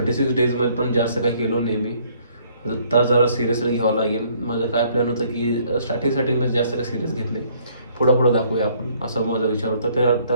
डेजमध्ये पण जास्त काही केलो नाही मी. आता जरा सिरियसली घ्यावं लागेल. माझं काय प्लॅन होतं की स्टार्टिंगला जास्त काही सिरियस घेत नाही, पुढं दाखवूया आपण, असं माझा विचार होता. तर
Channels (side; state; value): both; inverted; correlation -0.63